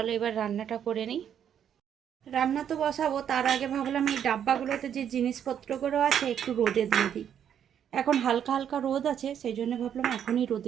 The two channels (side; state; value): left; quieter; 9.1 dB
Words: এবার রান্নাটা করে নিই। রান্না তো বসাবো, তার আগে ভাবলাম এই ডাব্বাগুলোতে যে জিনিসপত্রগুলো আছে একটু রোদে দিয়ে দিই। এখন হালকা হালকা রোদ আছে, সেই জন্য ভাবলাম এখনই